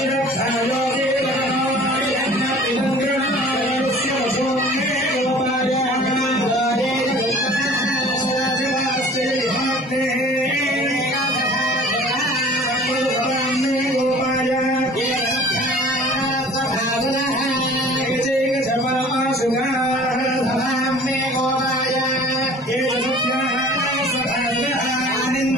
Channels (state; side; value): normal; both; correlation 0.47